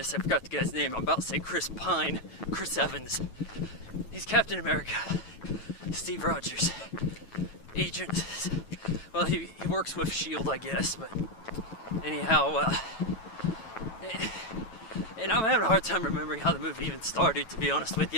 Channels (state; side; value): late; right; 9.2 ms